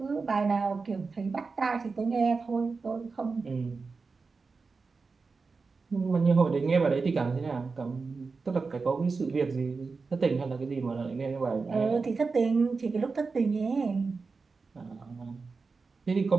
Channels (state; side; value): quieter; left; 4.5 dB